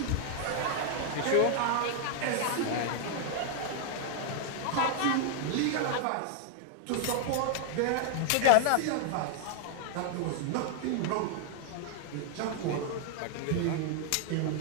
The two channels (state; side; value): different; both; correlation 0.00